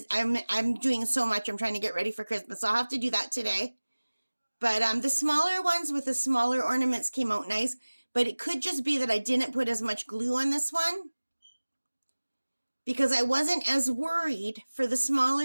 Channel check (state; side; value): inverted; both; correlation -1.00